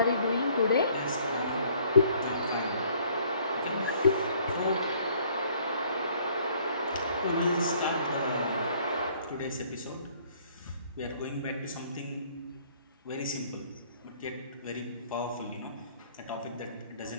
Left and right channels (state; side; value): inverted; both; correlation -0.60